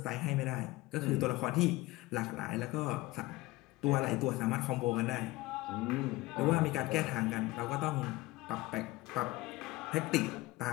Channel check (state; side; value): quieter; right; 19.5 dB